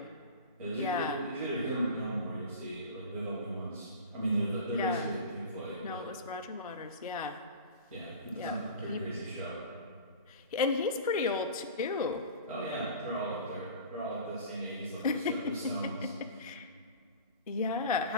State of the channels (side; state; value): both; inverted; correlation -0.35